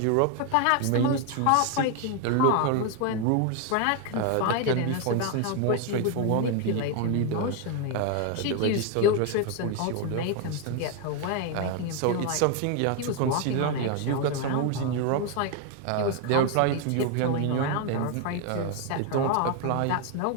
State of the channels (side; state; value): both; different; correlation 0.01